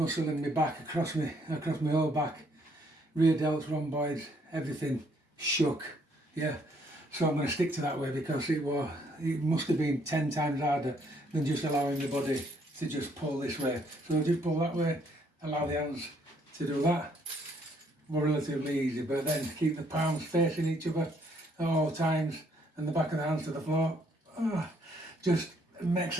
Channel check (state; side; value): normal; both; correlation 0.67